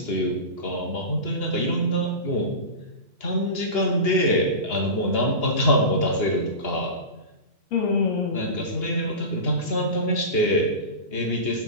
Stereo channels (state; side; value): late; right; 2.8 ms